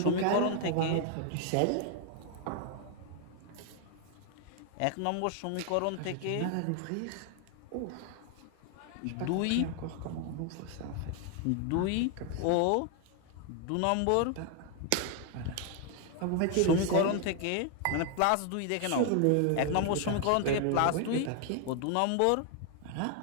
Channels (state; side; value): different; both; correlation 0.00